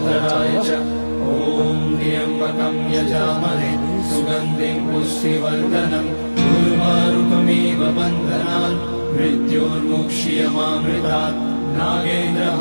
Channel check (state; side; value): inverted; both; correlation -1.00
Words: च। ॐ त्र्यम्बकं यजामहे सुगन्धिं पुष्टिवर्धनम् उर्वारुकमिव बन्धनान् मृत्योर्मुक्ष्यमामृतात्।